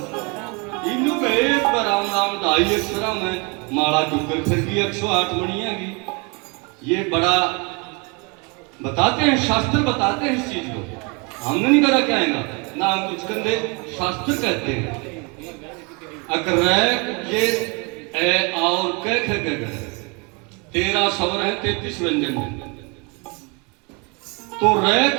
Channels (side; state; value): left; quieter; 31.1 dB